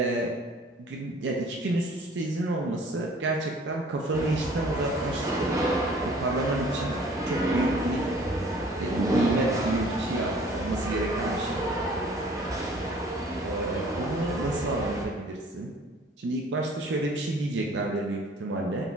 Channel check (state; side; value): normal; both; correlation 0.52